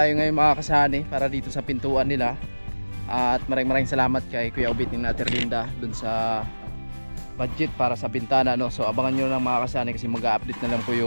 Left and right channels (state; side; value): inverted; both; correlation -1.00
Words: ngayon mga kasani para dito sa pintuan nila. At maraming salamat kay Kuya Obit ni Ate Linda dun sa budget para sa bintana, no? So abangan nyo lang mga kasani kasi mag-update na lang po